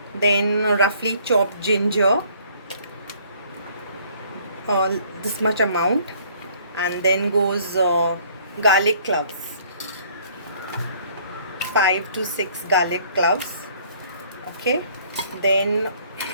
then roughly chopped ginger, this much amount. And then goes garlic cloves, 5 to 6 garlic cloves. Okay, then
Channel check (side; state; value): both; inverted; correlation -0.59